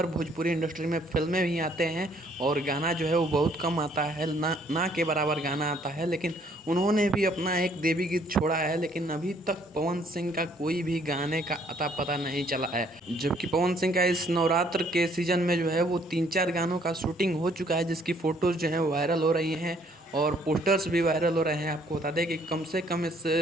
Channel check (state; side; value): normal; both; correlation 0.64